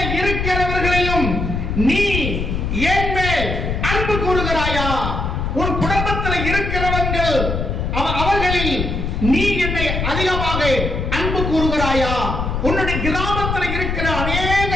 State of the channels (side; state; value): left; noise; rumble, 2 dB below the sound